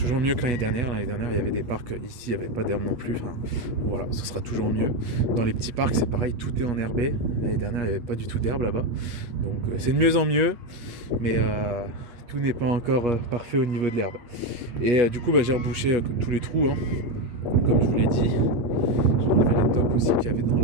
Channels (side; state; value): left; late; 8.5 ms